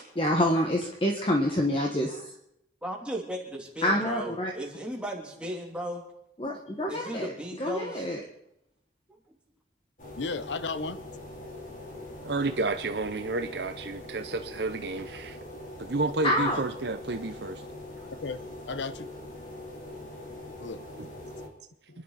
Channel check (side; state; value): both; normal; correlation 0.29